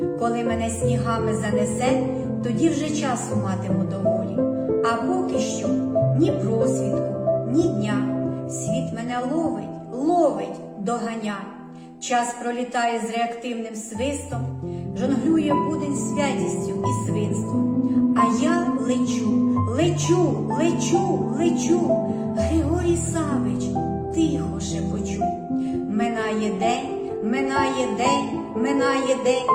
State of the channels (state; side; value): identical; both; correlation 1.00